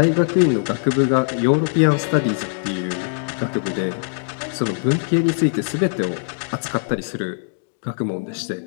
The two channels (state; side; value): silent; right; digital silence